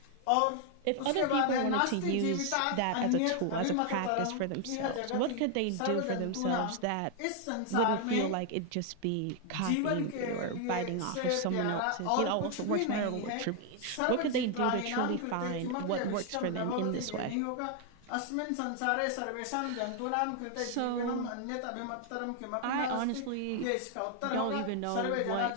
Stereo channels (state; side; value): different; both; correlation 0.00